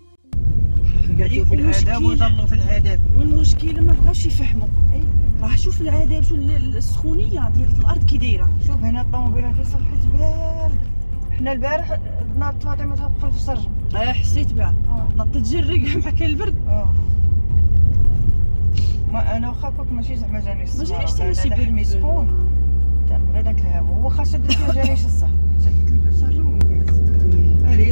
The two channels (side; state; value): both; inverted; correlation -1.00